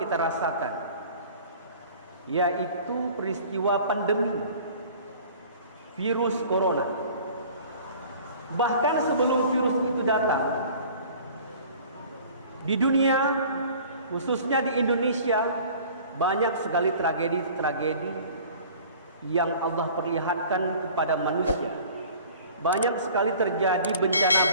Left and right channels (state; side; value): inverted; both; correlation -0.47